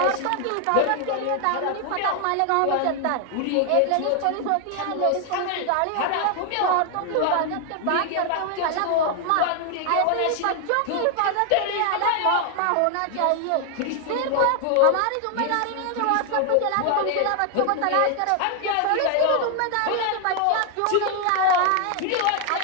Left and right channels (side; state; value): both; different; correlation 0.00